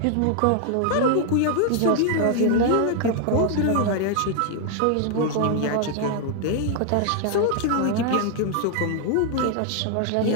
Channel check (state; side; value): different; both; correlation 0.00